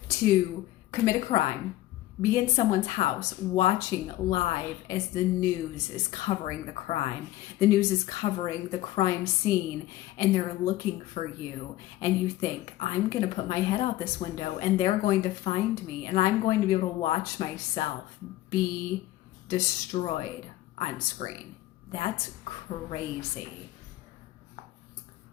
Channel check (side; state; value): right; quieter; 15.7 dB